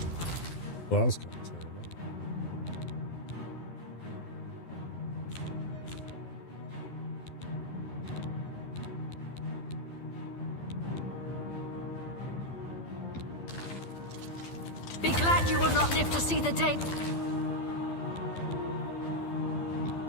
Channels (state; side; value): late; right; 12 ms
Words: Well, that was kind of terrible. Be glad you will not live to see the day